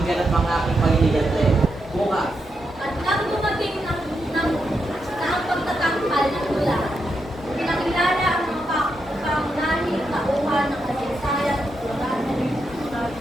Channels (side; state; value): both; normal; correlation 0.83